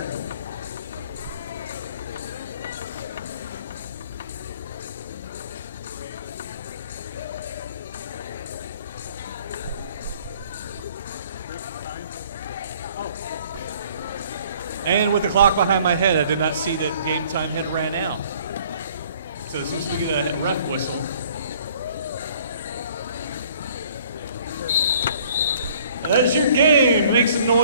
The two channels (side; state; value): both; inverted; correlation -0.56